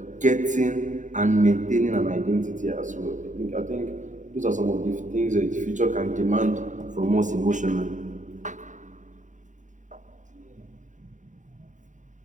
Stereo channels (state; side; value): late; left; 0.36 ms